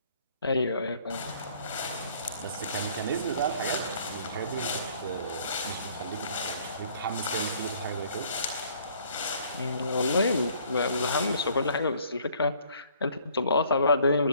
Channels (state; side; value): inverted; both; correlation -0.59